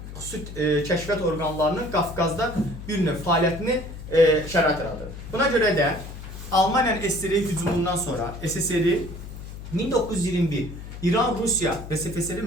xüsusi kəşfiyyat orqanlarının Qafqazda bir növ fəaliyyətini şərait yaradır. Buna görə də Almaniyanın SSR hücumundan sonra SSR 1921 İran-Rusiya və SFSR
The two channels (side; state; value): left; noise; hum, 11 dB below the sound